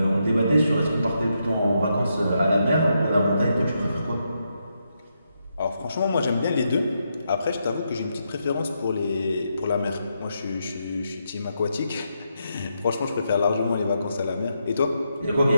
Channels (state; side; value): inverted; both; correlation -0.82